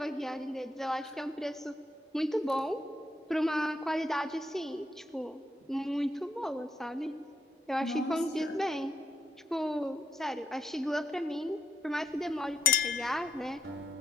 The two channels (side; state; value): both; normal; correlation 0.79